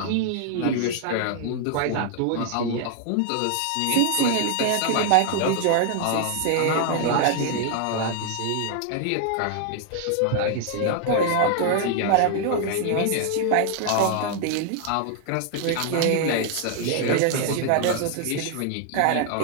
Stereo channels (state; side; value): different; both; correlation 0.00